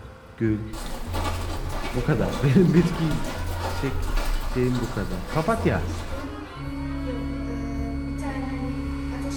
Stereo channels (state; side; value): identical; both; correlation 1.00